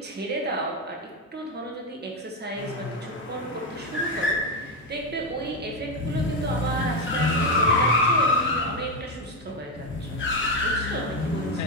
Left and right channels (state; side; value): normal; both; correlation 0.09